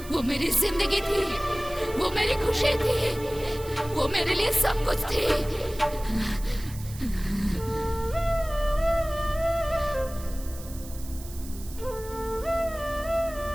वो मेरी जिंदगी थी, वो मेरी खुशी थी, वो मेरे लिए सब कुछ थी।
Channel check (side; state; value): right; noise; hiss, 16 dB below the sound